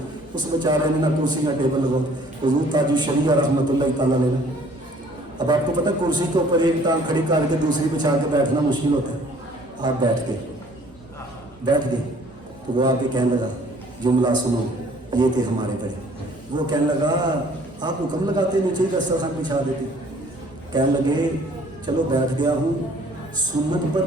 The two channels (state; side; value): normal; both; correlation 0.56